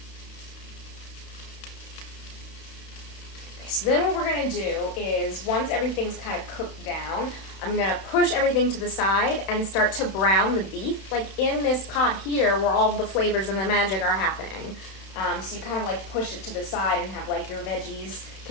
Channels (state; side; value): late; right; 31 ms